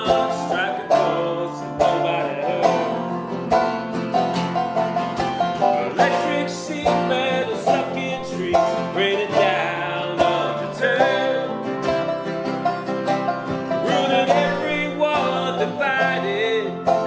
striking chords that nobody heard. Electric sheet metal stuck in trees, raining down undeterred. Ruling everyone divided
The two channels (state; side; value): identical; both; correlation 1.00